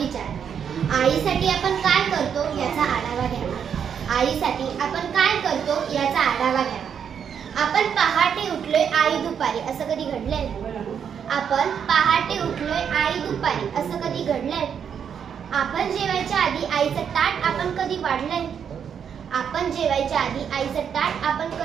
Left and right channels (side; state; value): left; quieter; 7.7 dB